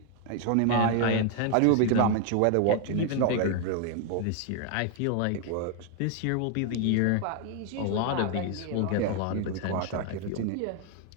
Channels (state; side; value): different; both; correlation 0.00